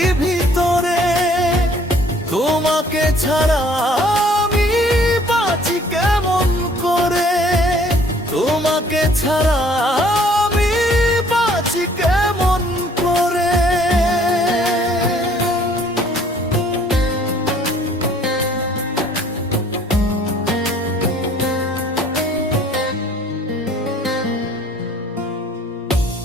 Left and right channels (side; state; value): both; normal; correlation 0.58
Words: ভিতরে, তোমাকে ছাড়া আমি বাঁচি কেমন করে, তোমাকে ছাড়া আমি বাঁচি কেমন করে।